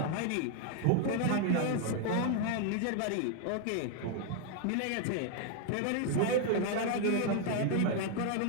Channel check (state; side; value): different; both; correlation 0.00